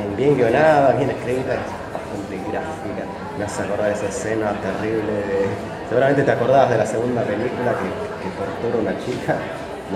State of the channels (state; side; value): identical; both; correlation 1.00